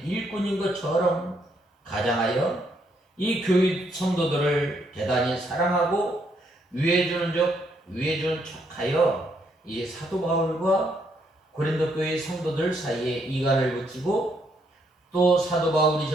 일꾼인 것처럼 가장하여 이 교회 성도들을 대단히 사랑하고 위해주는 척하여 이 사도 바울과 고린도 교회 성도들 사이에 이간을 붙이고 또 사도 바울이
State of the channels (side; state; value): both; normal; correlation 0.73